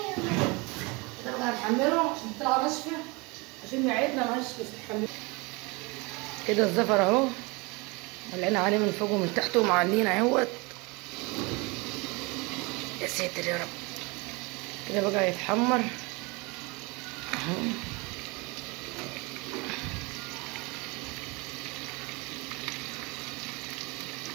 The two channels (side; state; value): left; quieter; 27.0 dB